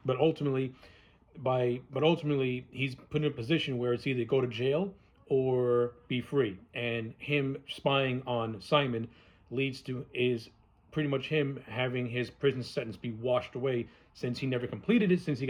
But ultimately he's put in a position where it's either go to jail or be free. And him spying on Simon leads to is pretty much him having his prison sentence be washed away since he never completed it, since he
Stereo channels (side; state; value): both; identical; correlation 1.00